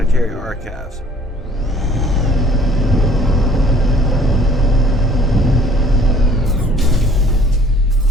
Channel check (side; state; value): both; normal; correlation 0.55